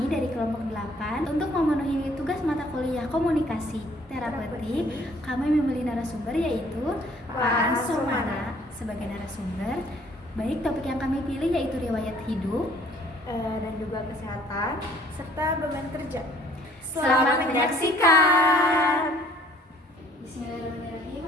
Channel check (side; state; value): both; normal; correlation 0.58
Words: dari kelompok 8 untuk memenuhi tugas mata kuliah komunikasi terapeutik, kami memilih narasumber yaitu Pak Ansomana sebagai narasumber. Baik, topik yang kami pilih yaitu riwayat hidup dan juga kesehatan serta beban kerja. Selamat menyaksikan. Bismillahirrahmanirrahim.